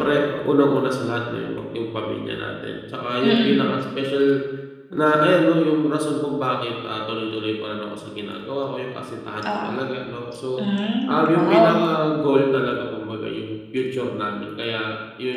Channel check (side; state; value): both; identical; correlation 1.00